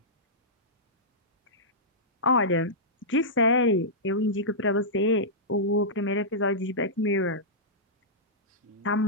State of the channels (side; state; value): both; normal; correlation -0.14